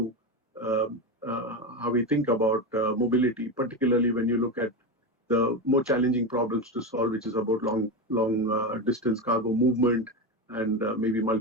how we think about mobility, particularly when you look at the more challenging problems to solve, which is about long distance cargo movement and maybe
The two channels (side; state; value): both; normal; correlation 0.16